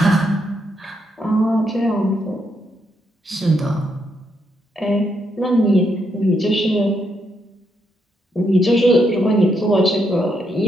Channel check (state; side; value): normal; both; correlation 0.78